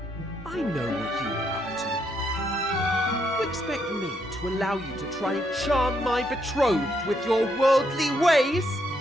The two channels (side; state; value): both; normal; correlation 0.76